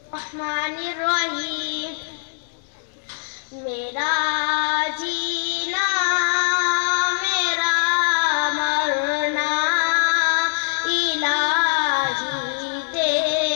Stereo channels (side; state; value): right; silent; digital silence